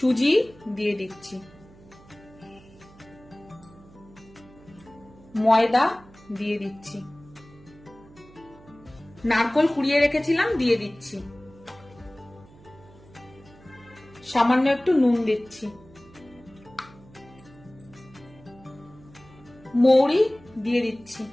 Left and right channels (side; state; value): right; noise; hum, 24 dB below the sound